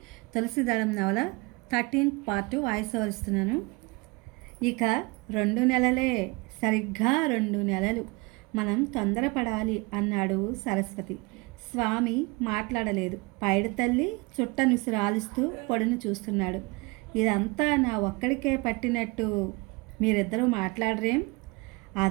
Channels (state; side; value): quieter; left; 25.9 dB